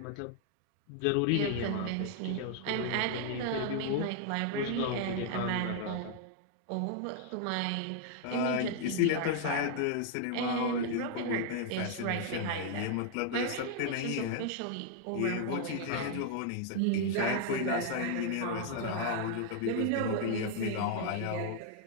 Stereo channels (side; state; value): both; different; correlation 0.00